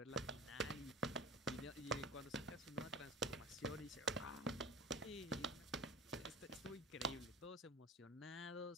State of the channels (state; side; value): normal; both; correlation 0.33